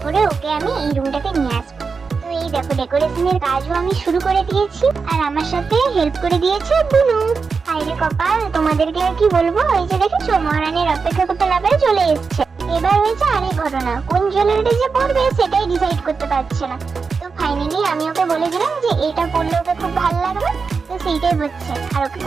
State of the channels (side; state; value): left; quieter; 5.0 dB